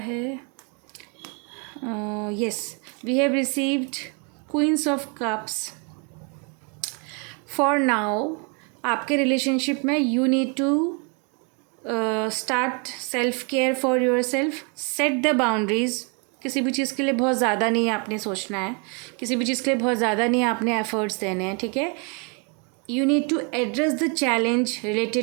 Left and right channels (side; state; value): left; quieter; 34.5 dB